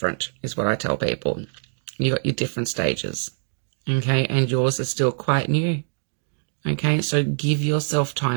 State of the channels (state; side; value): silent; left; digital silence